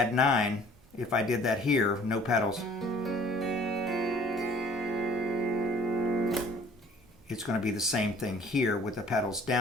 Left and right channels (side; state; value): both; normal; correlation 0.53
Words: 9. If I did that here, no pedals, it's going to be the same thing here with the pedals